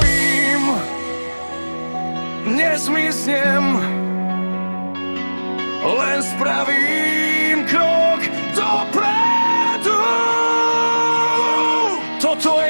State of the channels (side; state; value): both; inverted; correlation -1.00